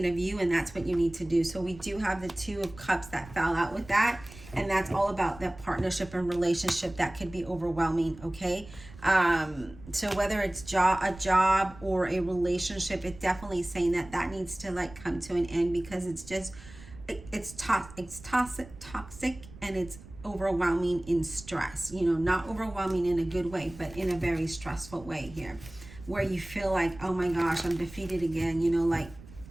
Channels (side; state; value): right; noise; rumble, 18 dB below the sound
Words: of you, and that's what you need to do. So we do have the 2 of Cups that fell out with that, and that's all about that partnership and relationship that could be overwhelming, okay? So whether it's a job or a relationship, it's definitely saying that needs to come to an end, because it's just, it's toxic, and it's overwhelming in stress, not overwhelming in a good way, but in a very stressful way here, where you feel like, oh my gosh, I'm defeated again.